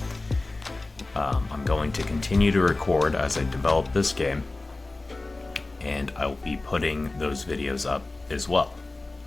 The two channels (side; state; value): right; quieter; 3.1 dB